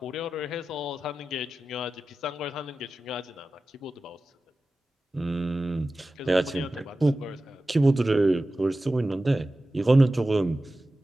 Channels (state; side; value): normal; both; correlation 0.94